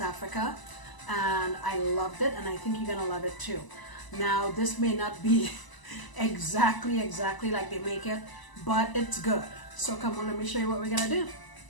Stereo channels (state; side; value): late; right; 1.0 ms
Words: Africa, and I loved it, and I think you're gonna love it too. Now this may not be exactly like they make it, but it's good. So come on, let me show you what we're gonna do.